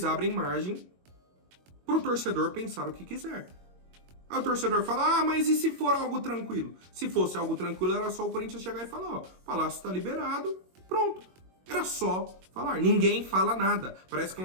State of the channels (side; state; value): left; late; 22 ms